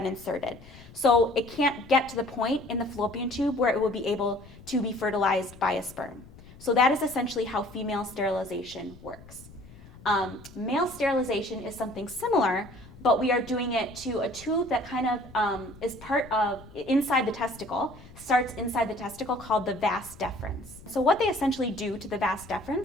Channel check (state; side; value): noise; left; rumble, 20 dB below the sound